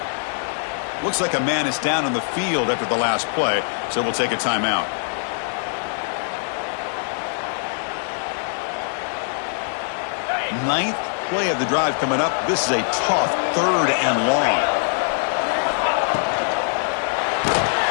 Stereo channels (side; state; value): right; silent; digital silence